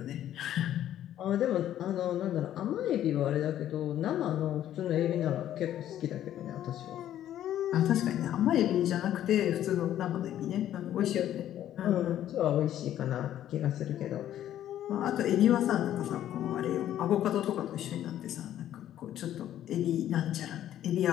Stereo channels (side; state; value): right; quieter; 11.7 dB